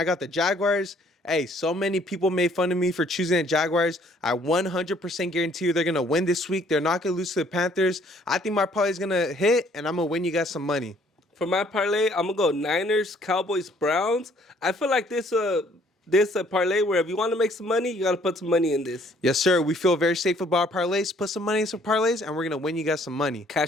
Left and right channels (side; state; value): both; normal; correlation 0.61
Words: got the Jaguars. Hey, so many people made fun of me for choosing the Jaguars. I 100% guarantee you they're going to win this week. They're not going to lose to the Panthers. I think my parlay is going to hit, and I'm going to win you guys some money. For my parlay, I'm going to go Niners, Cowboys, Browns. I feel like this this a parlay where if you want to make some money, you got to put some money in this. Yes, sir. We feel very safe about our parlays. Put some money in some parlays, and we're going to win you guys some money.